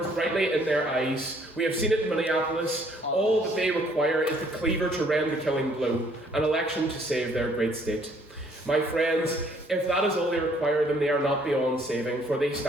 brightly in their eyes. We have seen it in Minneapolis. All that they require is the cleaver to rend the killing blow, an election to save their great state. My friends, if that is all they require, then they are not beyond saving, for they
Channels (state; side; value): normal; both; correlation 0.63